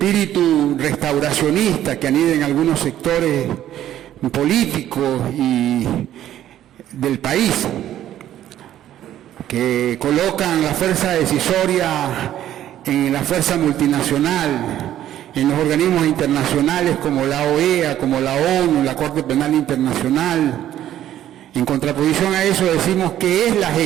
restauracionista que anida en algunos sectores políticos y del país, que colocan la fuerza decisoria en la fuerza multinacional, en los organismos internacionales como la OEA, como la ONU, la Corte Penal Internacional. En contraposición a eso decimos que es la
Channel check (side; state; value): left; quieter; 12.0 dB